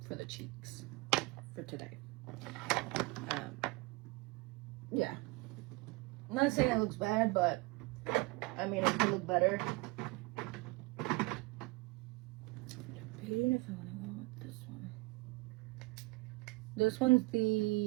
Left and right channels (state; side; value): quieter; left; 24.6 dB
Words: for the cheeks for today. Yeah, I'm not saying it looks bad, but I mean it could look better. Debating if I want to go with this one. This one's